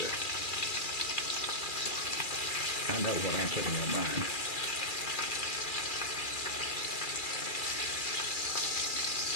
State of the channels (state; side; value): late; right; 2.4 ms